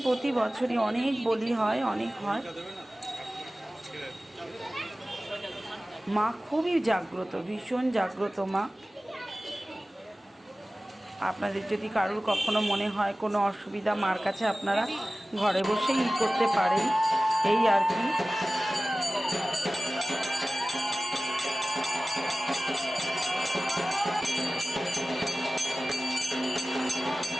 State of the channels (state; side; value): normal; both; correlation 0.96